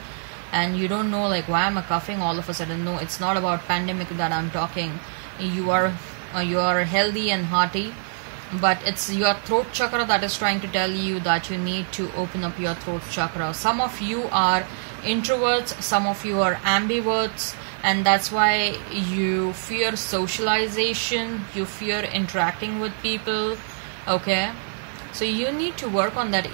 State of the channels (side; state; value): left; silent; digital silence